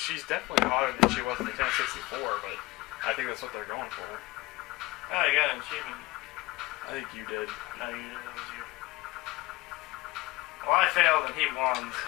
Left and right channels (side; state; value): right; quieter; 20.4 dB